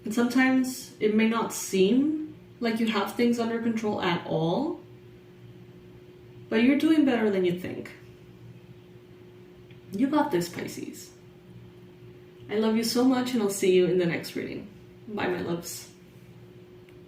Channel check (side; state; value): both; identical; correlation 1.00